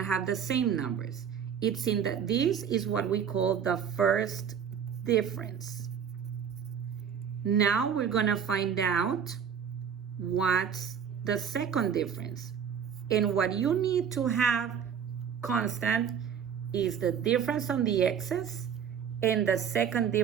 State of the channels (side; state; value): left; quieter; 7.6 dB